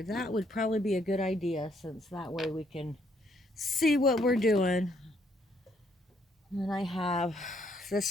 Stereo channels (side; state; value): both; normal; correlation 0.70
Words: that would probably be a good idea, since that way we can see what we're doing. And I have,